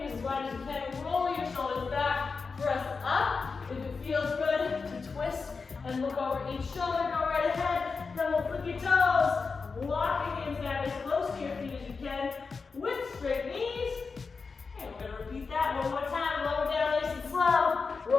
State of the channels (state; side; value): quieter; right; 4.7 dB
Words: as wide as you can. Roll your shoulders back. Press up. If it feels good, to twist and look over each shoulder. Go right ahead. Then we'll flip your toes. Lock your hands down as close to your feet as you can with straight knees. And we're going to repeat that one more time. Lower down nice and slow.